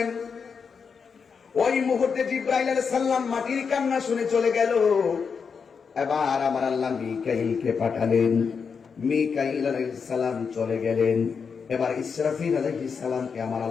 ওই মুহূর্তে জিবরাইল আলাইহিস সালাম মাটির কান্না শুনে চলে গেল। এবার আমার আল্লাহ মিকাইলকে পাঠালেন। মিকাইল আলাইহিস সালাম চলে গেলেন। এবার ইসরাফিল আলাইহিস সালামকে আমার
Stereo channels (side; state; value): right; quieter; 5.9 dB